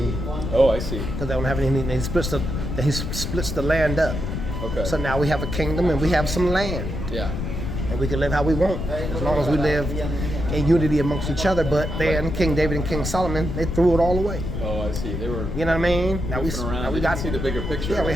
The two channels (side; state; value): left; noise; rumble, 4 dB below the sound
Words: Oh, I see. Because they don't have any. He splits the land up. Okay. So now we have a kingdom and we have some land. Yeah. And we can live how we want as long as we live in unity amongst each other. But then King David and King Solomon, they threw it all away. Oh, I see. They were... You know what I mean? Now we got to see the bigger picture. Yeah, we